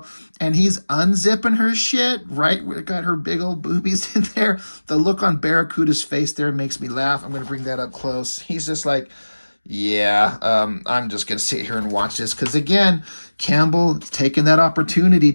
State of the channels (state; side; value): inverted; both; correlation -1.00